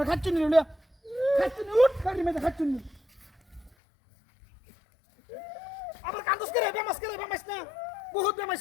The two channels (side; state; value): right; drops out; at 3.7 s